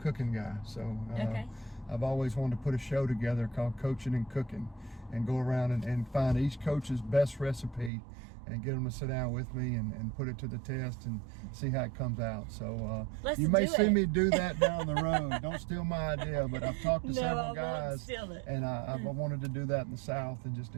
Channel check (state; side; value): drops out; left; at 7.9 s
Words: guy. So Okay. I've always wanted to put a show together called Coaching and Cooking, and go around and find each coach's best recipe and get them to sit down with me and put it to the test and see how it comes out. So Let's you may do see it. me do that down the road. Don't steal my idea, but I've talked to No, I several won't guys. steal it. And I wanted to do that in the South and just